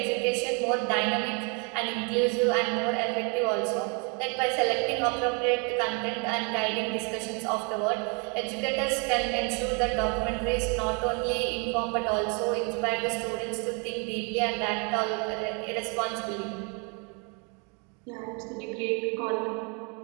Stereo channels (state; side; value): quieter; left; 34.4 dB